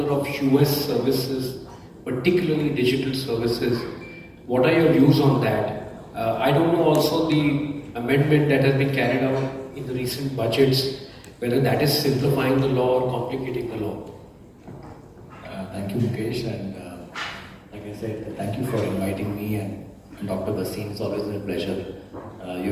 of US services, particularly digital services, what are your views on that? I don't know also the amendment that has been carried out in the recent budgets, whether that is simplifying the law or complicating the law. Thank you, Mukesh, and like I said, thank you for inviting me and Dr. Basin. It's always been a pleasure.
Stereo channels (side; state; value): both; identical; correlation 1.00